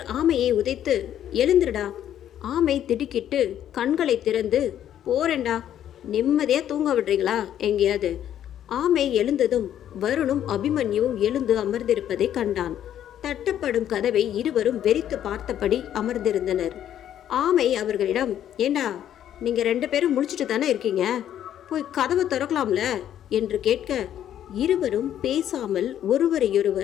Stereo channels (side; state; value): right; quieter; 10.7 dB